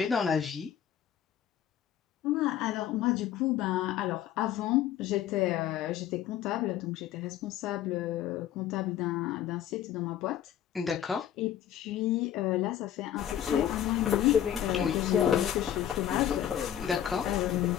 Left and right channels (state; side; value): quieter; right; 10.7 dB